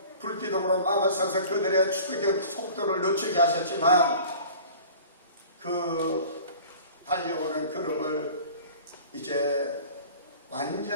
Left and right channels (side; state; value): both; inverted; correlation -0.44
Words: 불 기둥으로 막으셔서 그들의 추격의 속도를 늦추게 하셨지만 그 달려오는 걸음을 이제